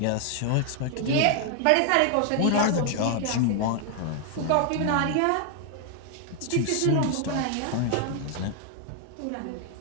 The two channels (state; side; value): different; both; correlation 0.00